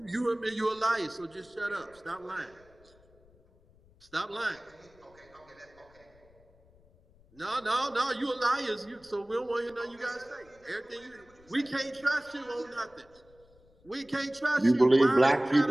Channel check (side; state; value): left; noise; rumble, 29 dB below the sound